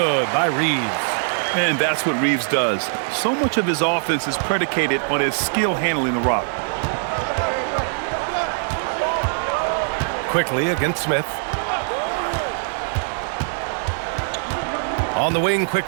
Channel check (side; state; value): left; silent; 64 dB below the other